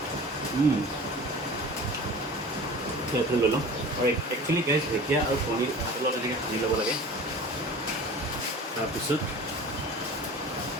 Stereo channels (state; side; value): normal; both; correlation 0.39